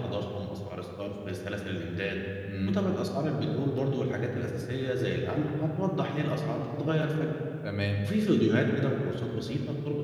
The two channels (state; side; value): identical; both; correlation 1.00